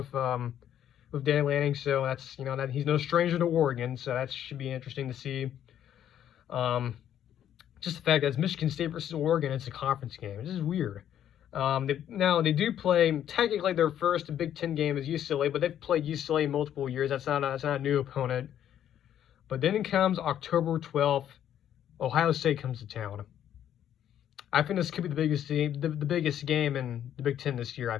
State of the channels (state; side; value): quieter; right; 10.4 dB